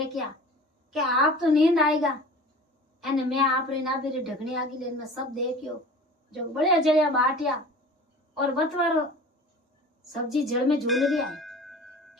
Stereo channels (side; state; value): both; normal; correlation 0.41